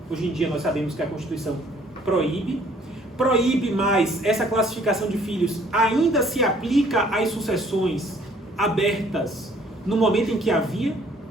Hoje em dia nós sabemos que a Constituição proíbe, proíbe mais essa classificação de filhos, ainda se aplica às sucessões abertas no momento em que havia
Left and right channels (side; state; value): both; normal; correlation 0.60